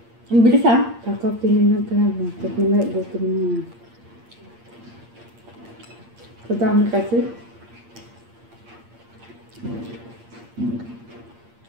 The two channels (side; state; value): left; late; 8.6 ms